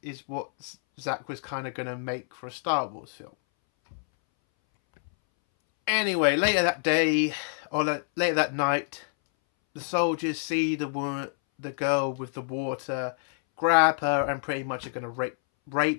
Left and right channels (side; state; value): right; silent; 60 dB below the other